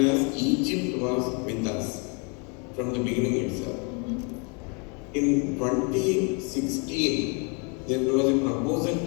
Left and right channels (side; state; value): right; quieter; 35.0 dB